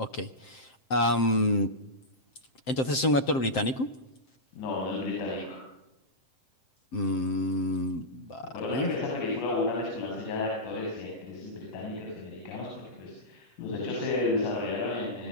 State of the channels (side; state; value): right; late; 7.6 ms